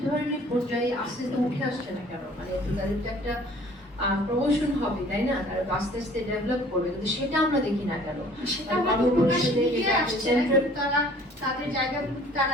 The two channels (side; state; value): both; normal; correlation 0.53